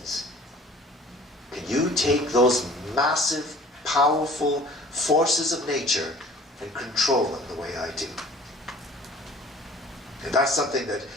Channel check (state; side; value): normal; both; correlation 0.49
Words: Can you take those massive, powerful forces of nature and control them the way I do? And that's something that